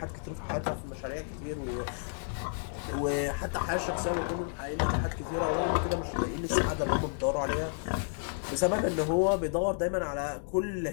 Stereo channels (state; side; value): silent; right; digital silence